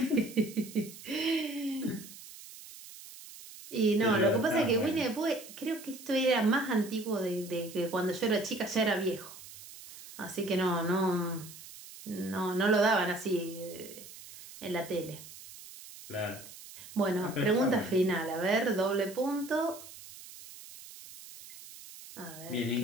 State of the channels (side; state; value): right; noise; hiss, 16 dB below the sound